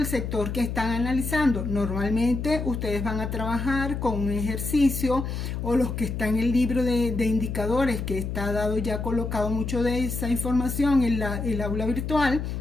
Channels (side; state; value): left; noise; hum, 4 dB below the sound